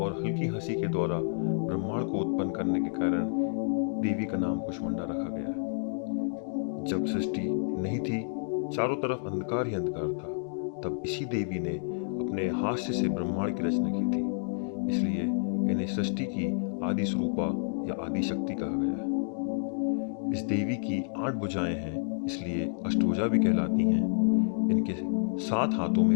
और हल्की हंसी के द्वारा ब्रह्मांड को उत्पन्न करने के कारण देवी का नाम कुष्मांडा रखा गया है। जब सृष्टि नहीं थी, चारों तरफ अंधकार ही अंधकार था, तब इसी देवी ने अपने हास्य से ब्रह्मांड की रचना की थी। इसलिए इन्हें सृष्टि की आदि स्वरूपा या आदि शक्ति कहा गया है। इस देवी की 8 भुजाएं हैं, इसलिए अष्टभुजा भी कहलाती हैं। इनके 7 हाथों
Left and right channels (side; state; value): right; silent; digital silence